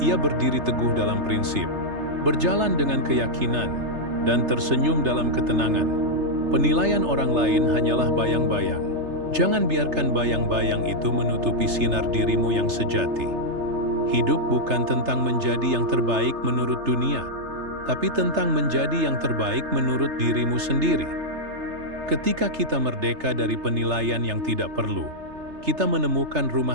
Ia berdiri teguh dalam prinsip, berjalan dengan keyakinan, dan tersenyum dalam ketenangan. Penilaian orang lain hanyalah bayang-bayang. Jangan biarkan bayang-bayang itu menutupi sinar dirimu yang sejati. Hidup bukan tentang menjadi yang terbaik menurut dunia, tapi tentang menjadi yang terbaik menurut dirimu sendiri. Ketika kita merdeka dari penilaian yang tidak perlu, kita menemukan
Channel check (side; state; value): left; late; 3.3 ms